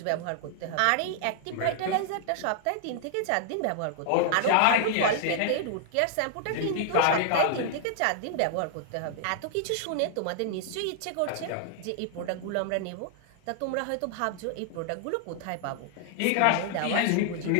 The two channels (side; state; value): both; different; correlation 0.00